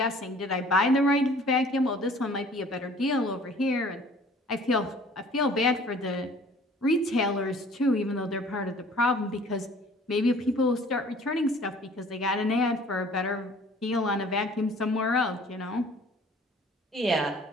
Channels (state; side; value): normal; both; correlation 0.52